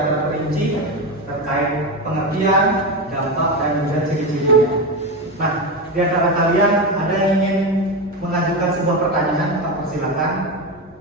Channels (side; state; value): both; normal; correlation 0.16